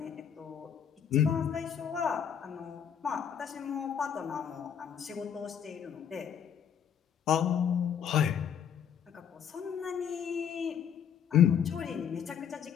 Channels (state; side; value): quieter; right; 8.3 dB